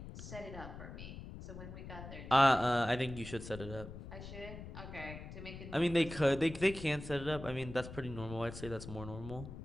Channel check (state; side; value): noise; left; rumble, 11 dB below the sound